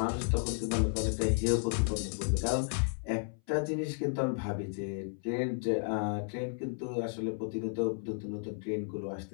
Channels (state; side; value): silent; right; 56 dB below the other